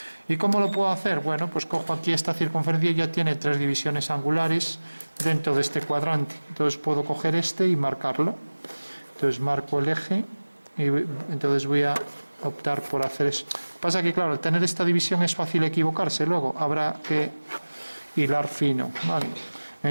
¿Y cómo lo puedo hacer? Bueno, pues cojo aquí esta circunferencia y ya tiene 3 divisiones angulares dentro de este cuadrante. Entonces puedo coger este y marcarlo. Entonces marco el eje y entonces voy a optar por hacer eso. Pasa que, claro, al tener esta división es fácil equivocarse, luego habrá que hilar fino, ¿vale?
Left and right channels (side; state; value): both; inverted; correlation -1.00